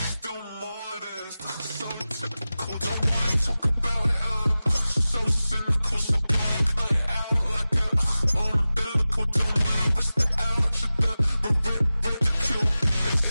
still modest, so typical. Don't wanna talk about it, so cynical. So cut it out like a umbilical. Don't wanna risk the ouch of the ridicule.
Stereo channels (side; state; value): both; inverted; correlation -0.96